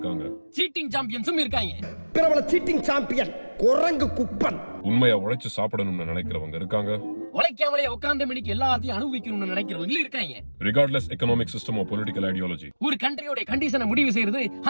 சீட்டிங் சாம்பியன்ஸும் இருக்காங்க. பிரபல சீட்டிங் சாம்பியன் குரங்கு குப்பன். உண்மையா உழைச்சு சாப்பிடணும்னு நினைக்கிறவங்க இருக்காங்க, உழைக்காமலே உட்கார்ந்த மணிக்கு எல்லாத்தையும் அனுபவிக்கணும்னு நினைக்கிறவங்க இருக்காங்க. Regardless economic system of political ideology. ஒரு கண்ட்ரியோட கண்டிஷனை முடிவு செய்யறது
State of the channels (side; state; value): both; inverted; correlation -1.00